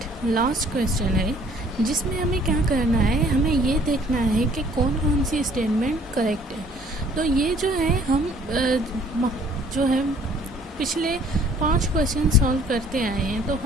last question है, जिसमें हमें क्या करना है, हमें ये देखना है कि कौन कौन सी स्टेटमेंट करेक्ट है। तो ये जो है हम जो है पिछले 5 क्वेश्चन सॉल्व करते आए हैं, तो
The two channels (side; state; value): both; normal; correlation 0.57